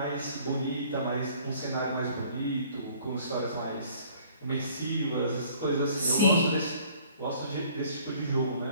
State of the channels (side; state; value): both; inverted; correlation -0.56